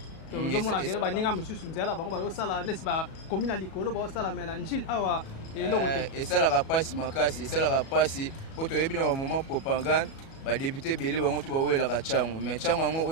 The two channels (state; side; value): late; right; 37 ms